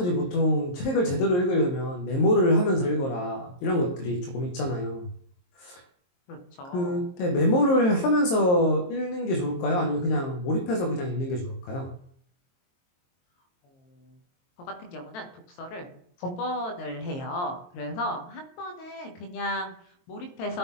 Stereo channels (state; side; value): late; right; 22 ms